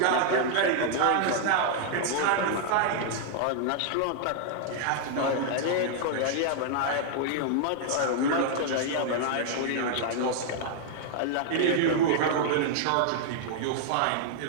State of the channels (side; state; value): both; different; correlation 0.00